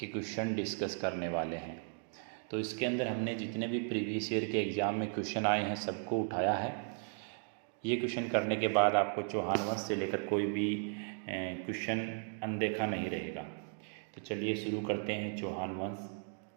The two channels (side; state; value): left; silent; 54 dB below the other